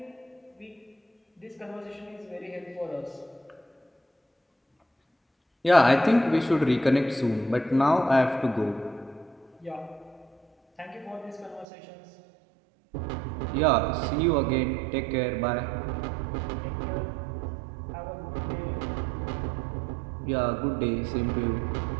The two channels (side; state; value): left; drops out; at 11.7 s